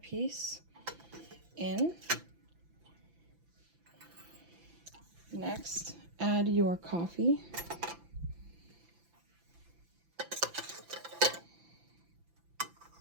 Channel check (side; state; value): left; late; 5.9 ms